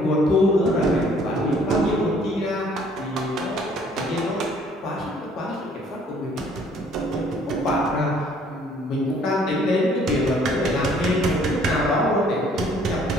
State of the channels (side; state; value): both; normal; correlation 0.60